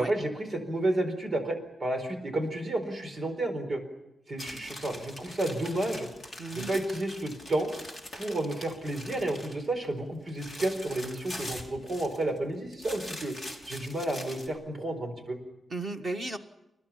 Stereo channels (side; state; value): both; normal; correlation 0.85